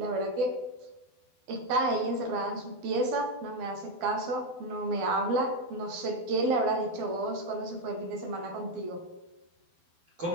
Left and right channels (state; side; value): late; left; 12 ms